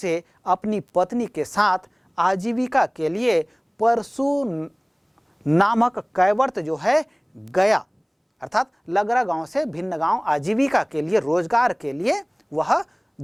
अपनी पत्नी के साथ आजीविका के लिए परशु नामक कैवर्त जो है गया, अर्थात लगरा गांव से भिन्न गांव आजीविका के लिए, रोजगार के लिए वह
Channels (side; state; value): both; identical; correlation 1.00